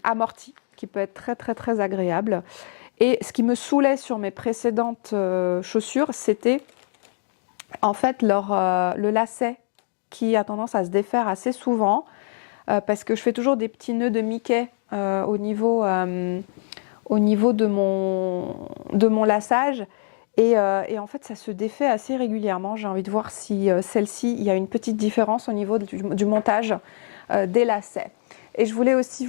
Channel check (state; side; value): silent; right; 63 dB below the other